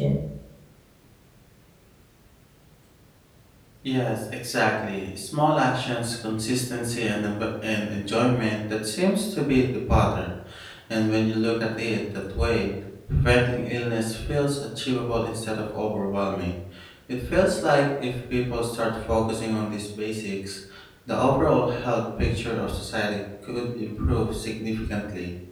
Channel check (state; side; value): identical; both; correlation 1.00